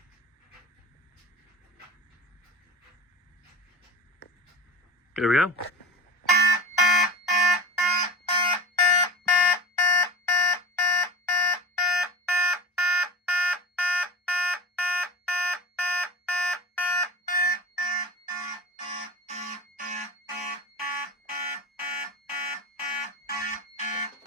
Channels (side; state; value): both; normal; correlation 0.31